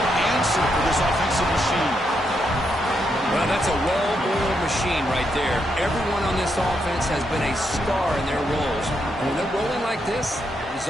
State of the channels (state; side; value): normal; both; correlation 0.80